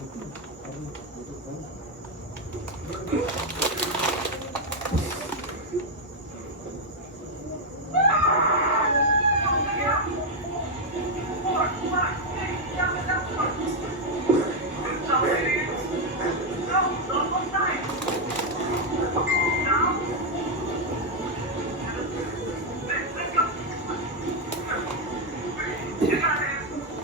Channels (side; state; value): both; normal; correlation 0.01